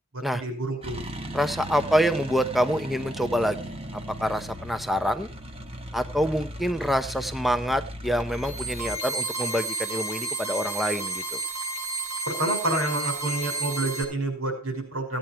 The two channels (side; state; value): both; normal; correlation 0.64